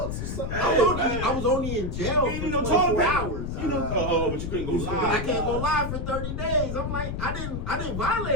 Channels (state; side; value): noise; left; rumble, 4 dB below the sound